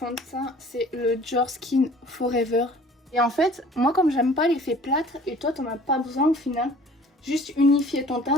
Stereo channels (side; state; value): both; normal; correlation 0.50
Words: c'est le Dior Skin Forever. Et en fait, moi comme j'aime pas l'effet plâtre, et toi t'en as pas besoin au final, juste unifier ton